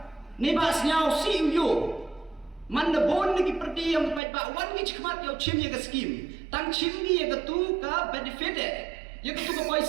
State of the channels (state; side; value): drops out; left; at 4.2 s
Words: Nei ba snyau si yo. Man the bon ni perdi yang pai ba wan ni chikmat yo chim ye ke scheme. Tang chim ni ye ke tu ka benefit ye ke tu ka